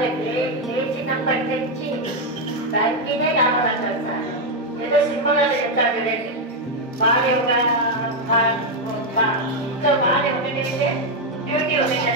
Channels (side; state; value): both; normal; correlation 0.03